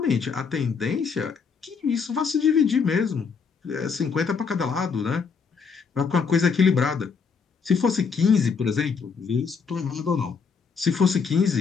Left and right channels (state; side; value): quieter; right; 5.6 dB